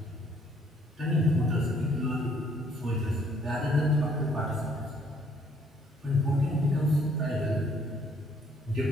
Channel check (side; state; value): both; normal; correlation 0.64